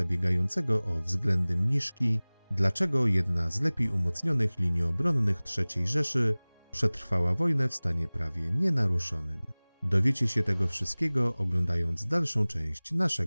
o względy mniszki, dlaczego jedna z lepiej umocnionych linii obronnych III Rzeszy przetrwała wojnę w stanie prawie nienaruszonym. Dowiecie się tego wszystkiego, oglądając dalszą część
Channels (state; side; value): inverted; both; correlation -1.00